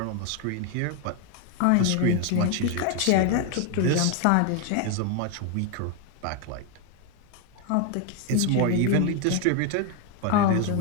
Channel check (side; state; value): both; different; correlation 0.01